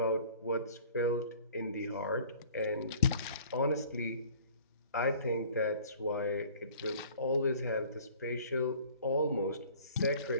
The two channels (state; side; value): inverted; both; correlation -0.50